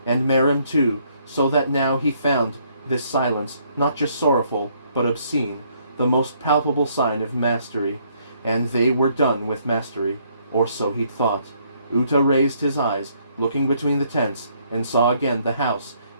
and Merim too, so that now he found this silence not just sorrowful, but obscene, the most palpable sign of mastery, and they were done with mastery, or so he'd thought. Uta raised his eyes, looking between the tents, and saw again the house,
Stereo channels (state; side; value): inverted; both; correlation -0.68